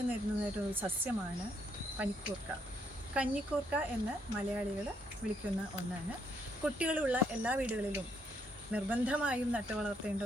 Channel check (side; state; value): both; normal; correlation 0.73